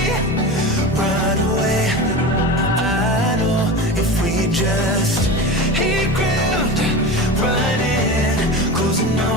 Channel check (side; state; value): both; normal; correlation 0.28